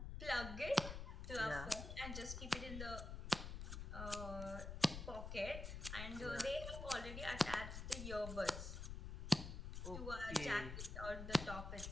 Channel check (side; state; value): left; noise; rumble, 6 dB below the sound